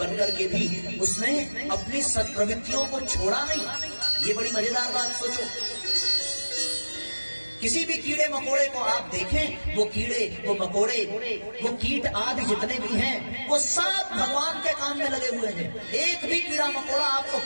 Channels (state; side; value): inverted; both; correlation -1.00